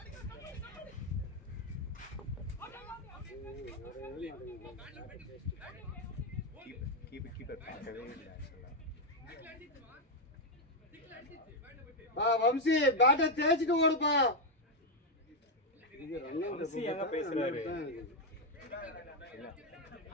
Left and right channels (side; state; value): both; normal; correlation 0.02